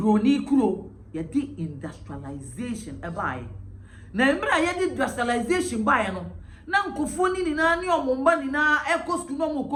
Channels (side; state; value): both; identical; correlation 1.00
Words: kuro ye di industrialization e baaye na emra ye di industrialization baaye no na nkofo ni na ne omomba ni na ekos no mo